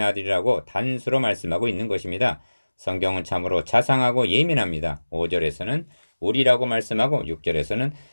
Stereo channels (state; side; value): inverted; both; correlation -1.00